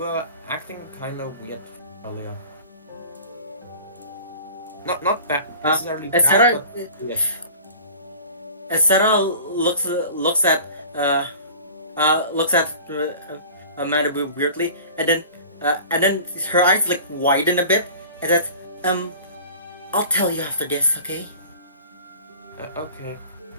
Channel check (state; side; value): inverted; both; correlation -0.42